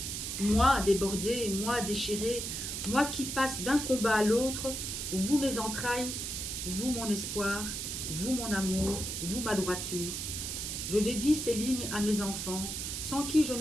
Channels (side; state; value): right; noise; hiss, 4 dB below the sound